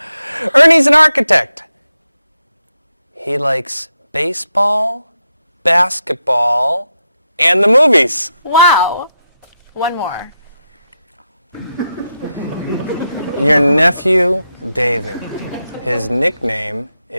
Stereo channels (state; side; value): inverted; both; correlation -0.86